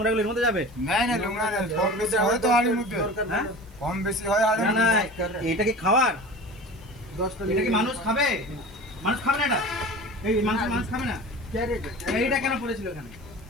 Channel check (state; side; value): noise; right; hiss, 29 dB below the sound